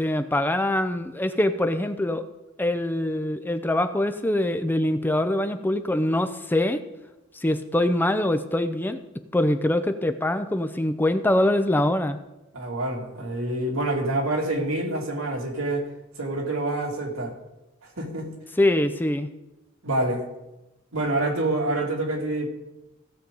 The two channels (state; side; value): normal; both; correlation 0.64